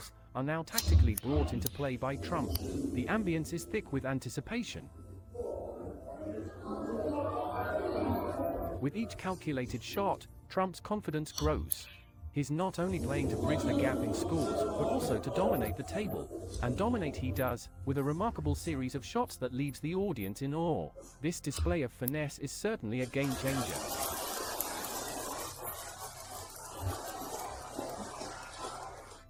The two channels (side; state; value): both; identical; correlation 1.00